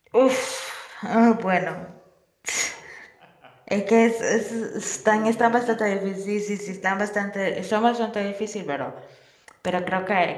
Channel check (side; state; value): both; identical; correlation 1.00